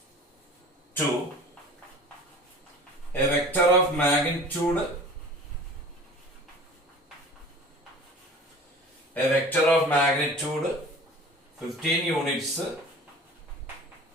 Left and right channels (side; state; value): both; normal; correlation 0.42